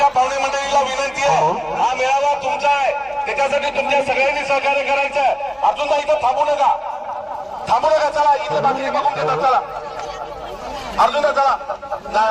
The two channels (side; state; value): both; identical; correlation 1.00